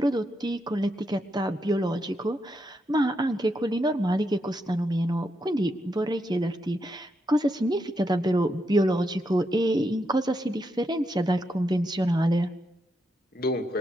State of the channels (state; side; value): normal; both; correlation 0.82